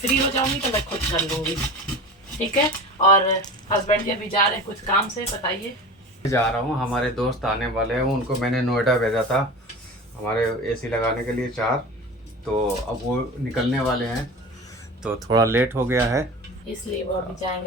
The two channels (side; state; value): both; normal; correlation 0.33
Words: हो जाऊंगी तो मैं खुद कर लूँगी, ठीक है। और हस्बैंड जी अभी जा रहे हैं कुछ काम से, बताइए। जा रहा हूँ, हमारे दोस्त आने वाले हैं, उनको मैंने नोएडा भेजा था हमारे एसी लगाने के लिए 4, तो अब वो निकलने वाले हैं, तो थोड़ा लेट हो गया है, इसलिए वो अभी